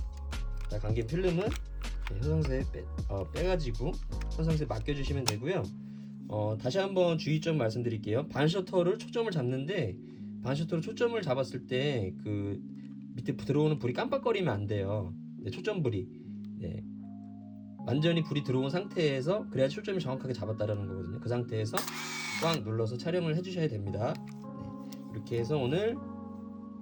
자, 감긴 필름은 현상세에 빼가지고 현상세에 맡겨주시면 되고요. 다시 한번 주의점 말씀드릴게요. 반셔터를 초점을 잡는데 반셔터로 초점을 잡았을 때 그 밑에 들어오는 불이 깜빡거리면 안 돼요. 네, 초점 불이. 네. 완전히 불이 들어온 상태에서 그래야 초점이 정확하게 잡았다라는 거거든요. 그 상태에서 꽉 눌러서 촬영을 해주셔야 됩니다. 네. 이렇게 해서 오늘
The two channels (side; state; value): both; identical; correlation 1.00